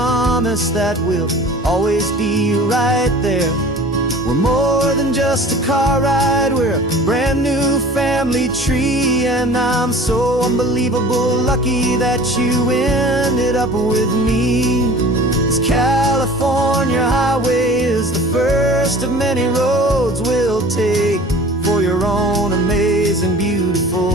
that we'll always be right there. We're more than just a car ride, we're a brand new family tree. And I'm so unbelievable lucky that you ended up with me. This California highway is the first of many roads we'll take for your own amazing,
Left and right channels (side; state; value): both; normal; correlation 0.43